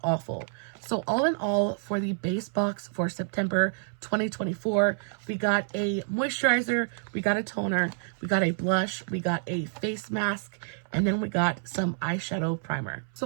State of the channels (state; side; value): silent; left; 59 dB below the other